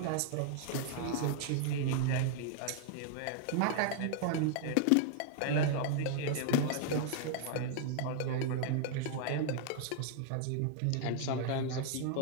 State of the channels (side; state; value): both; different; correlation 0.00